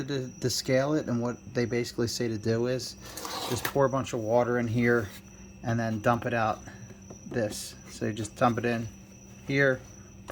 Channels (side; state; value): both; identical; correlation 1.00